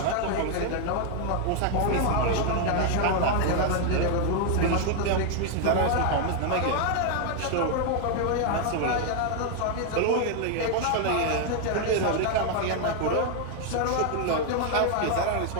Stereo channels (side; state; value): both; different; correlation 0.00